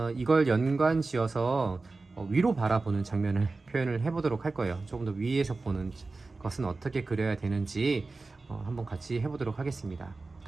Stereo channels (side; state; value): left; quieter; 3.6 dB